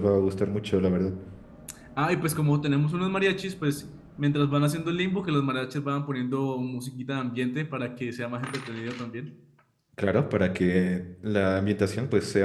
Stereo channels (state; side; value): identical; both; correlation 1.00